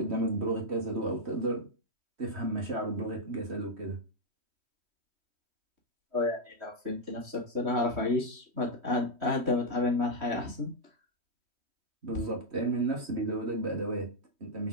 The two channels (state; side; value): late; left; 3.1 ms